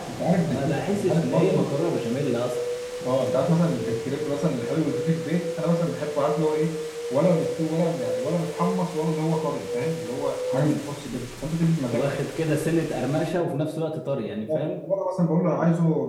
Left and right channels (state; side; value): identical; both; correlation 1.00